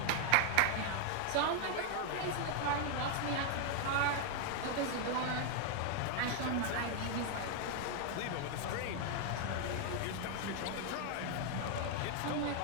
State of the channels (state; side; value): different; both; correlation 0.01